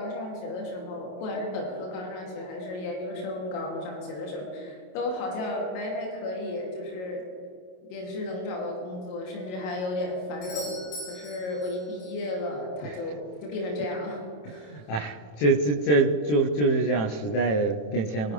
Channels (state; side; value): late; right; 27 ms